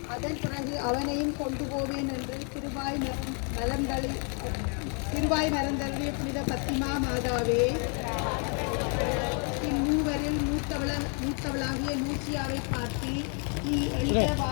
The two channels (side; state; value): right; quieter; 39.5 dB